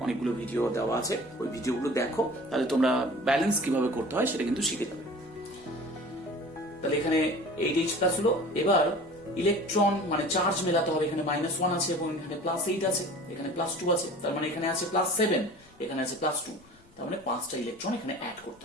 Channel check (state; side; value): noise; left; rumble, 28 dB below the sound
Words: অনেকগুলো ভিডিও দেওয়া আছে, ওই ভিডিওগুলো দেখো, তাহলে তোমরা ব্যালেন্স কিভাবে করতে হয় সেটা কিন্তু শিখে যাবে। তাহলে এখানে 8H+ হলো। এবার ইলেকট্রন মানে চার্জ মেলাতে হবে, এখানে -1 আছে এবং এখানে +8 আছে, এখানে +2 আছে, তার মানে এখানে আছে +7, এখানে আছে +2, তার মানে 5টা ইলেকট্রন এখানে অ্যাড করতে